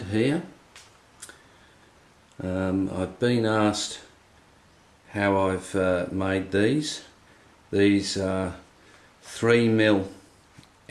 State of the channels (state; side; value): identical; both; correlation 1.00